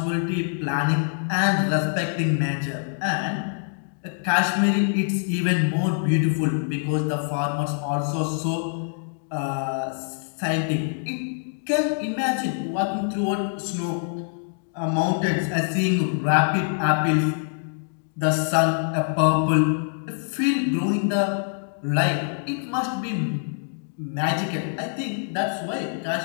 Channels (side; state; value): right; silent; digital silence